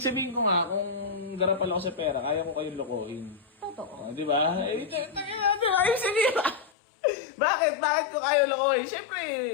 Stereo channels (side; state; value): right; drops out; at 6.7 s